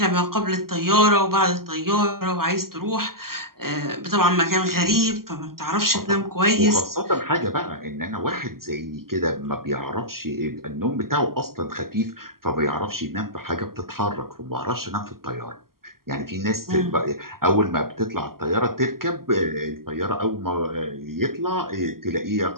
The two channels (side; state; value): left; late; 0.92 ms